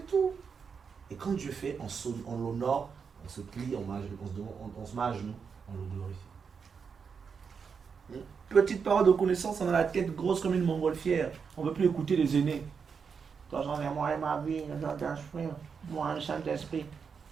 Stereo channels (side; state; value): left; quieter; 6.0 dB